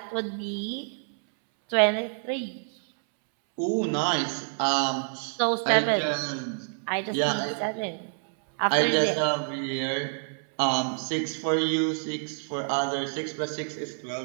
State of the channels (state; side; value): silent; left; 60 dB below the other